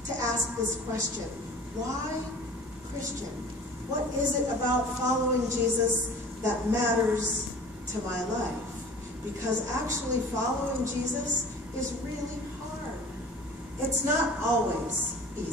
to ask this question. Why Christian? What is it about following Jesus that matters to my life? Because actually following Jesus is really hard. It's not always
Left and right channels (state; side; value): normal; both; correlation 0.43